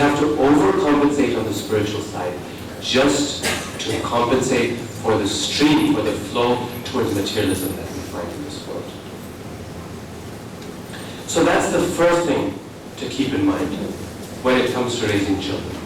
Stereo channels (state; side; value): identical; both; correlation 1.00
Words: to overcompensate on the spiritual side, just to compensate for the stream, for the flow towards materialism that we find in this world. So that's the first thing to keep in mind when it comes to raising children.